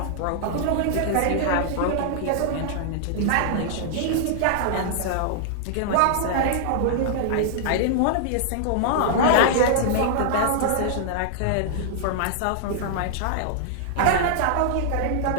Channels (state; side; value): different; both; correlation -0.01